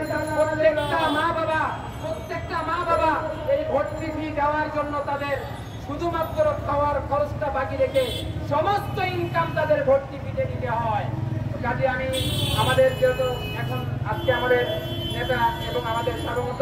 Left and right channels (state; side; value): identical; both; correlation 1.00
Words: প্রত্যেকটা মা বাবা এই ভর্তি ফি দেওয়ার জন্য তাদের শুধুমাত্র খাওয়ার খরচটা বাকি রেখে সমস্ত ইনকাম তাদের ভর্তি ফিতে দিতে হয়। কাজে আমি আমাদের যেহেতু এখন আজকে আমাদের নেতা এবং আমাদের সার্বভৌমত্ব